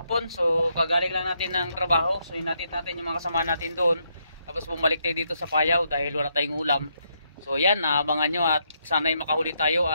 So kagaling lang natin ng trabaho. So hinatid natin yung mga kasama natin doon. Tapos bumalik tayo dito sa Payaw dahil wala tayong ulam. So yan, abangan nyo at sana'y makahuli tayo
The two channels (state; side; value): inverted; both; correlation -0.77